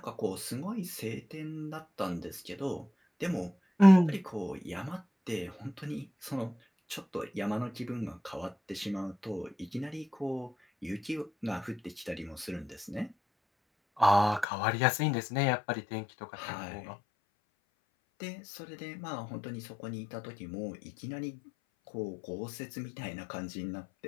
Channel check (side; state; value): right; drops out; at 14.5 s